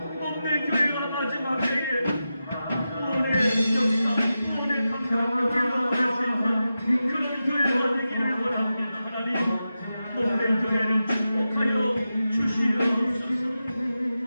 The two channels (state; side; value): inverted; both; correlation -0.91